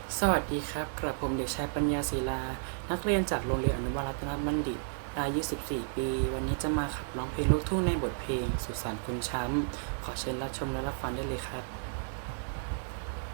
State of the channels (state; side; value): silent; left; digital silence